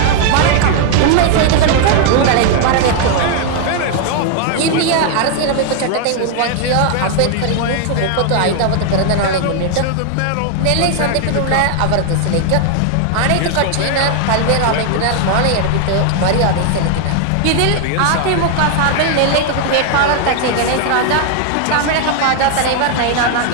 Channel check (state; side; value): different; both; correlation 0.00